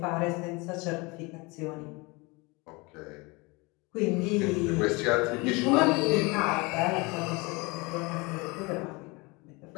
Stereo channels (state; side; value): quieter; right; 26.1 dB